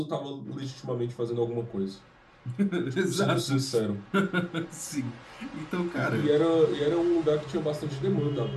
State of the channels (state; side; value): identical; both; correlation 1.00